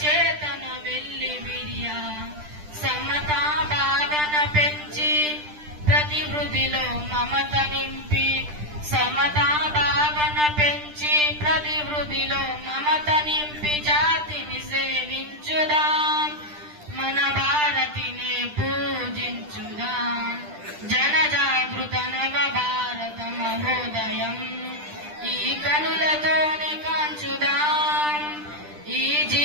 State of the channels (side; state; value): left; late; 10 ms